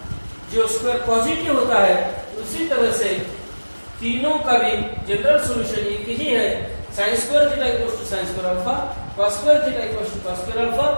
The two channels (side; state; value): both; inverted; correlation -1.00